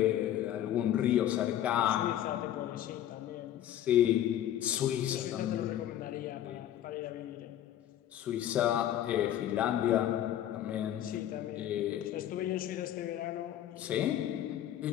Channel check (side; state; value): right; quieter; 11.7 dB